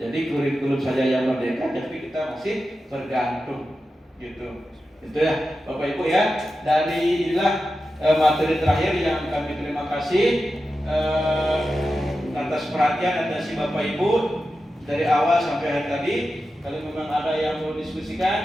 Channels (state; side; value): normal; both; correlation 0.91